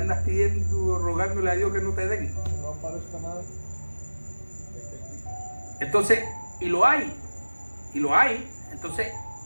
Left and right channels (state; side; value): inverted; both; correlation -1.00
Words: pidiendo, rogándole a Dios que no te den. No aparezca nada. Entonces, y lo hay. Entonces,